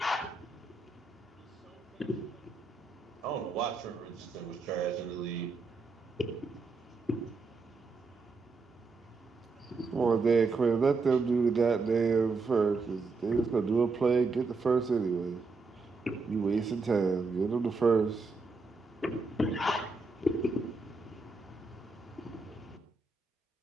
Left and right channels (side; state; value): left; quieter; 4.0 dB